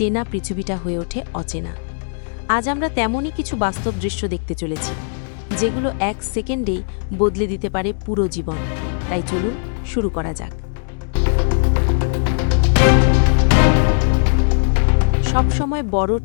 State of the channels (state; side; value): silent; right; digital silence